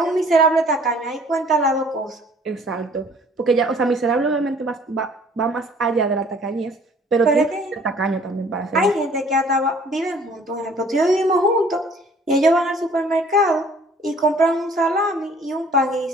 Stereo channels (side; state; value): both; normal; correlation 0.55